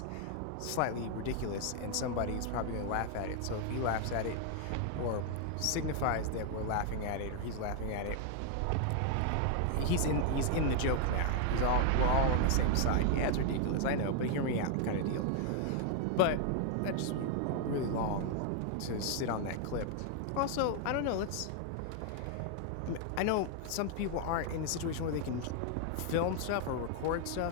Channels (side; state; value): both; different; correlation 0.00